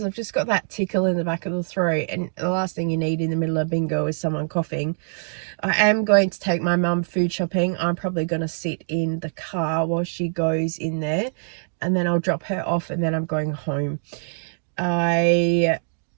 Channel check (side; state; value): left; silent; digital silence